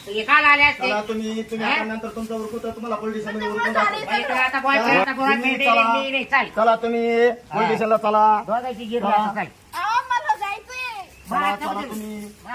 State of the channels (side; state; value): both; identical; correlation 1.00